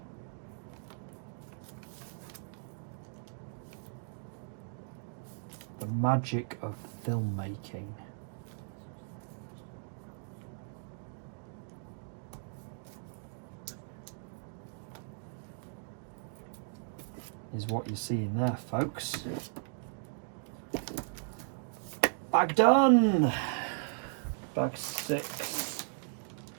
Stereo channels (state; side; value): silent; left; digital silence